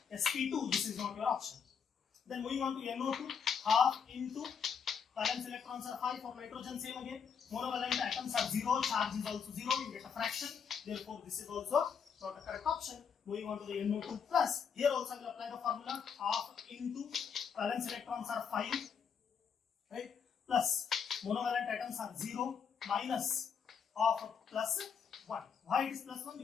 sp2. This is not your option. Then moving on to NO2, half into valence electrons are 5 for nitrogen, same again. Monovalent atoms are 0, charge is also 0, you get a fraction. Therefore, this is also not a correct option. Moving on to the NO2 plus, here also I will apply the formula half into valence electrons are 5, right? Plus monovalent atoms are 0 minus of plus 1. Why it is plus 1?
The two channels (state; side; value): quieter; right; 6.8 dB